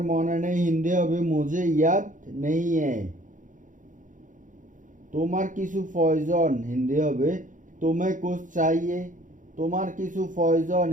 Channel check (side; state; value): left; late; 0.37 ms